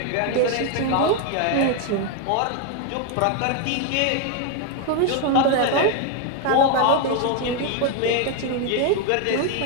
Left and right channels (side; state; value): both; different; correlation 0.01